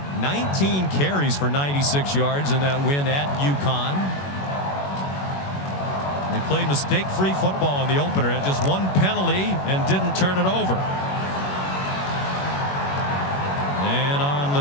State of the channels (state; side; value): late; right; 21 ms